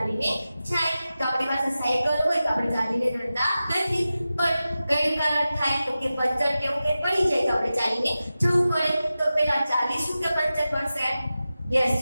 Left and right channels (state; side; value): inverted; both; correlation -0.94